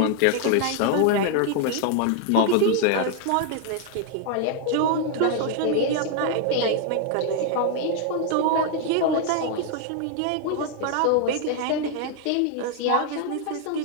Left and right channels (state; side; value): different; both; correlation 0.00